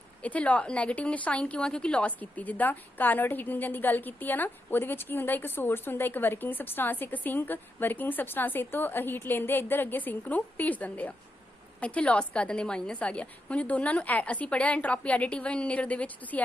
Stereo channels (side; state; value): both; normal; correlation 0.84